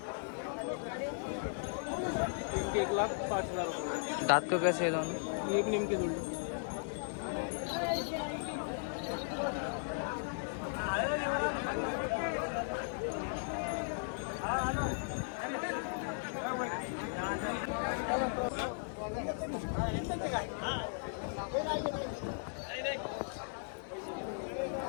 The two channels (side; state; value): right; silent; digital silence